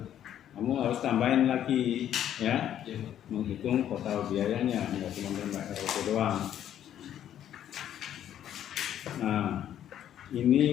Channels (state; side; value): quieter; right; 10.7 dB